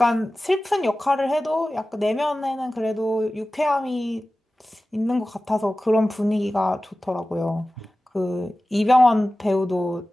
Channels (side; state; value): both; normal; correlation 0.96